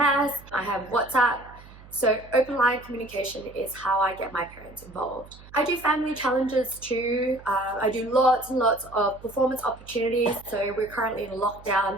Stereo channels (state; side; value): noise; right; hum, 20 dB below the sound